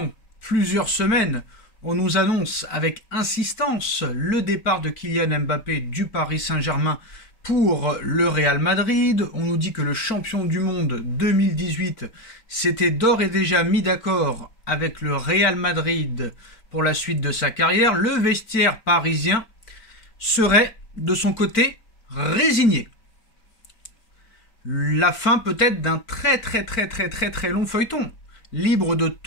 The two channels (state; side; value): late; right; 4.5 ms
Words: plusieurs semaines, on nous annonce avec insistance le départ de Kylian Mbappé du Paris Saint-Germain pour le Real Madrid. On nous dit que le champion du monde 2018 s'était d'ores et déjà mis d'accord avec le Real Madrid pour la suite de sa carrière. Le vestiaire parisien serait de son côté résigné. La fin peut-être d'un très long feuilleton. Libre de